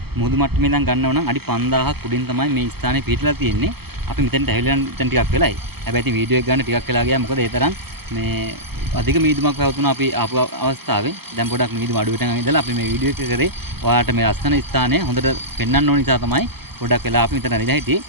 මුහුදු මට්ටමේ ඉඳන් ගන්නව නම් අඩි 5000ක් උඩින් තමයි මේ ස්ථානේ පිහිටලා තියෙන්නේ. අපි මෙතෙන්ට ඇවිල්ලා දැන් ටිකක් වෙලයි. හැබැයි ඉතින් වීඩියෝ එක ගන්න ටිකක් වෙලා ගියා. මොකද ඒ තරම් මේ අධික මීදුමක් පැවතුණා අපි ආපු අවස්ථාවේ. දැන් පොඩක් මීදුම අඩු වෙටන් ඉඳලා අපි මේ වීඩියෝ එක කරේ ඔයාලට මේ අස්තන ස්ථානය හොඳට පෙන්වන්න ඕන නිසා තමයි පොඩක් වෙලා අපි මෙතන ඇවිල්ලා හිටියේ.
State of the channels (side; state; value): left; late; 0.96 ms